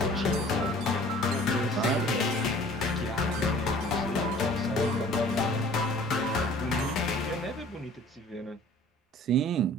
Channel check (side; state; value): both; normal; correlation 0.50